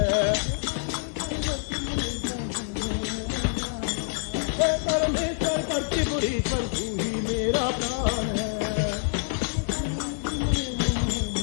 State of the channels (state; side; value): silent; right; digital silence